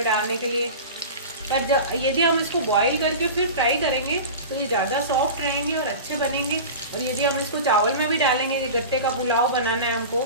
डालने के लिए। पर जब यदि हम इसको बॉईल करके फिर फ्राई करेंगे तो ये ज़्यादा सॉफ्ट रहेंगे और अच्छे बनेंगे। और यदि हम इसको चावल में भी डालेंगे, ये गट्टे का पुलाव बनाना है हमको,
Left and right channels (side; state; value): both; inverted; correlation -0.32